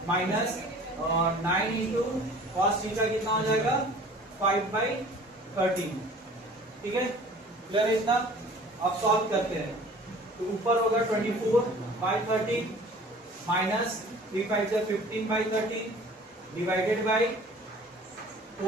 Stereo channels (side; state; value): both; normal; correlation 0.47